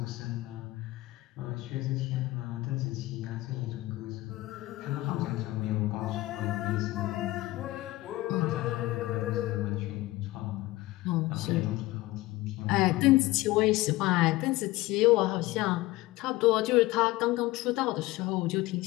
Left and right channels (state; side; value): quieter; right; 18.8 dB